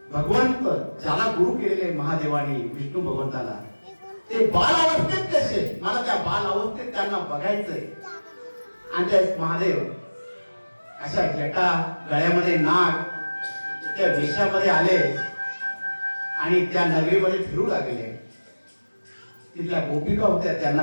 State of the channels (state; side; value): inverted; both; correlation -1.00